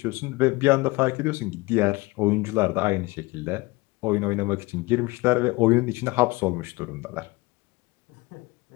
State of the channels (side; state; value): right; quieter; 23.4 dB